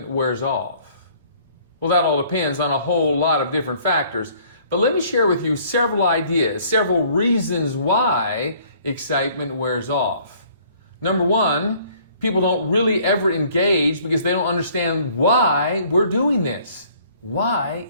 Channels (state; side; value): inverted; both; correlation -0.58